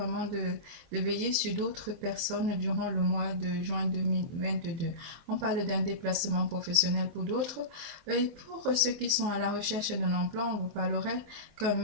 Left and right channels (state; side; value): late; left; 24 ms